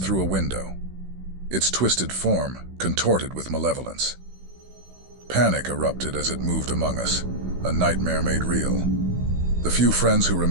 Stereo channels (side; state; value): left; late; 16 ms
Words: through a window, its twisted form contorted with malevolence. Panic erupted as it moved among us, a nightmare made real. The few friends who